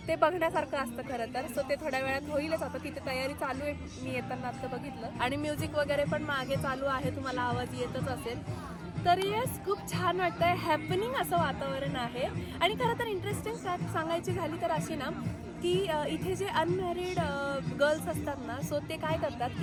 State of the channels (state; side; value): identical; both; correlation 1.00